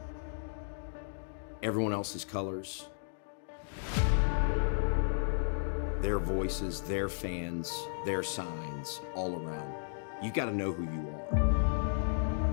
Everyone else's colors, their voices, their fans, their signs, all around. You got to know who you are.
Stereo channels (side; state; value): right; silent; digital silence